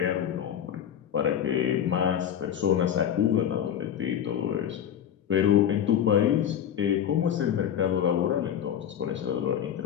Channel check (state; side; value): quieter; right; 9.4 dB